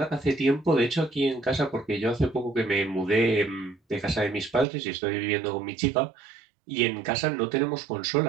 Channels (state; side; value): drops out; left; at 4.7 s